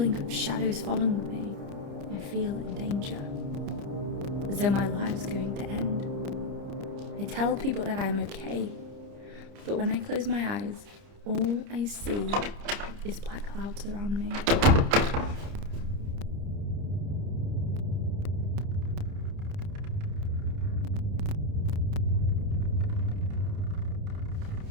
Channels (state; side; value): late; left; 30 ms